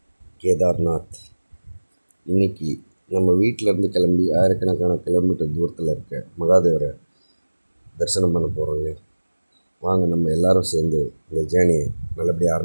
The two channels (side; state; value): both; inverted; correlation -1.00